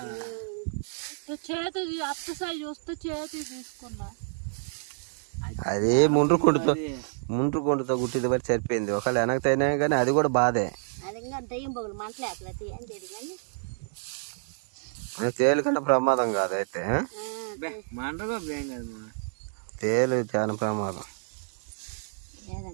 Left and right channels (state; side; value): silent; left; digital silence